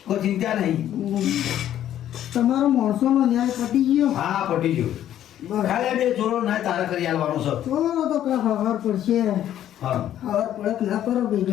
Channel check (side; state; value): right; quieter; 11.4 dB